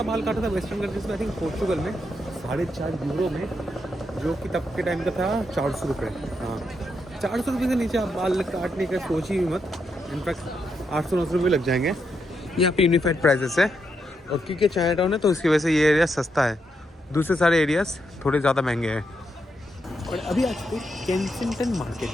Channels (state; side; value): normal; both; correlation 0.81